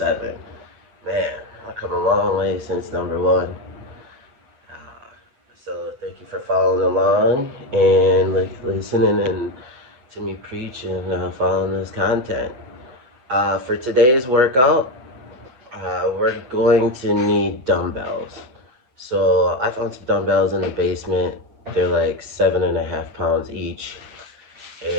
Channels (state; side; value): late; left; 8.2 ms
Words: Man, I've come a long way since number 1. So thank you for following along and listening and to me preach and following this content. For today's workout, we're going to need dumbbells. So I found some dumbbells in the basement. They're like 7.5 pounds each.